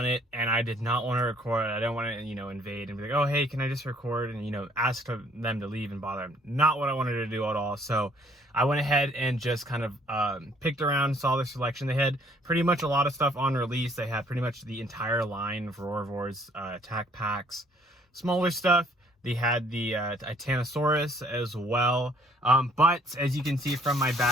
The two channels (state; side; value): normal; both; correlation 0.61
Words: it, and I did not want to record. I don't want to, invade and be like, oh, hey, can I just record? And, ask them to leave and bother them. Not what I wanted to do at all. So I went ahead and just kind of picked around, saw their selection. They had pretty much a lot of stuff on release. They had pretty much the entire line of Roarvors, attack packs, smaller stuff. They had the Titanosaurus as well. But as you can see from my